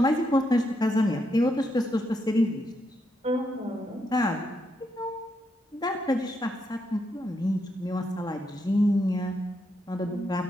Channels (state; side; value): normal; both; correlation 0.80